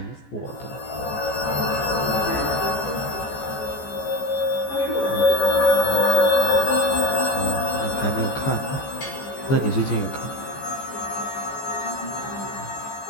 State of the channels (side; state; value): right; late; 14 ms